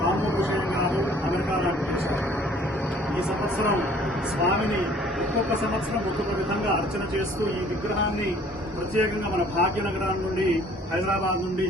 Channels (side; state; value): both; normal; correlation 0.55